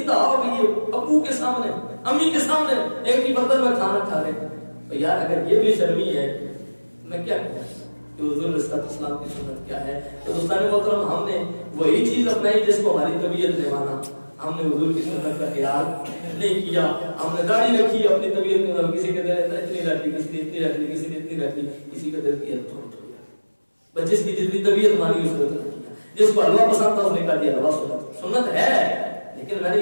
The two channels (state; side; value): inverted; both; correlation -1.00